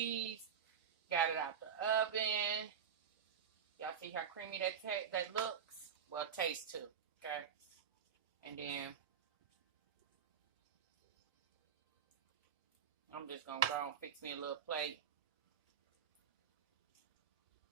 Got it out the oven. Y'all see how creamy that looks? Well, it tastes too, okay? And then I'm just gonna go and fix me a little plate.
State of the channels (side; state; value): left; quieter; 7.7 dB